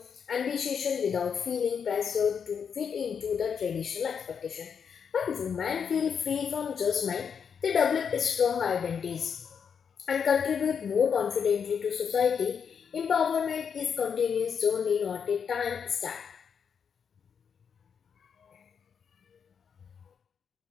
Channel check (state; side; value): quieter; right; 6.9 dB